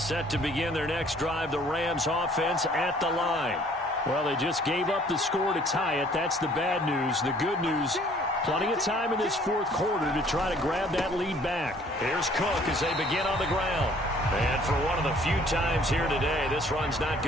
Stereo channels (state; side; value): normal; both; correlation 0.57